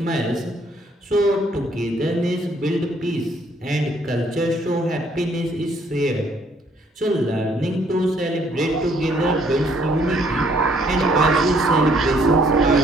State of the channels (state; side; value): normal; both; correlation 0.65